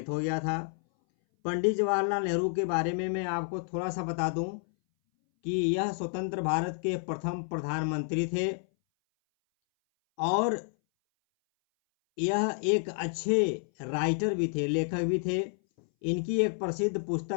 हो गया था। पंडित जवाहरलाल नेहरू के बारे में मैं आपको थोड़ा सा बता दूं कि यह स्वतंत्र भारत के प्रथम प्रधानमंत्री थे और यह एक अच्छे राइटर भी थे, लेखक भी थे। इनकी एक प्रसिद्ध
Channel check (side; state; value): right; silent; 58 dB below the other